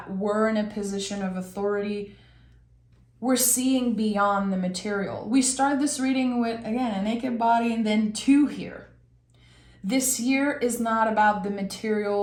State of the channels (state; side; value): identical; both; correlation 1.00